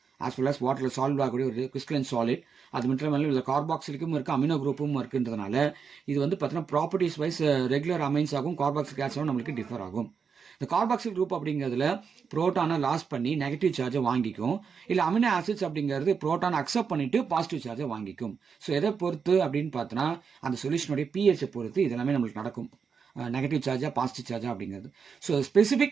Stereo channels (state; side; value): quieter; left; 6.1 dB